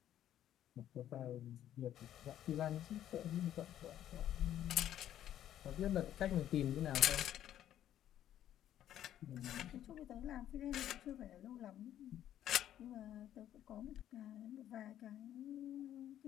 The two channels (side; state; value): right; quieter; 11.5 dB